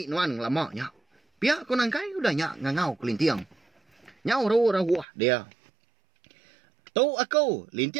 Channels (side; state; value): left; drops out; at 5.1 s